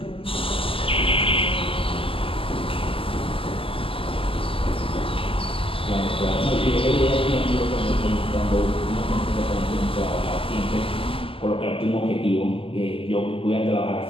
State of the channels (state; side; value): late; right; 0.26 ms